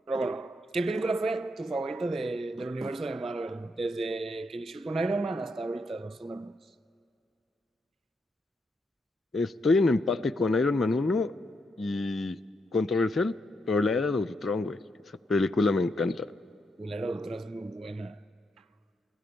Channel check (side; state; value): both; normal; correlation 0.79